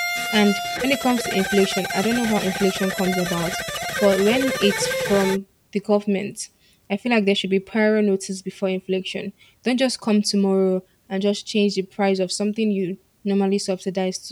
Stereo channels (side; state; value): both; identical; correlation 1.00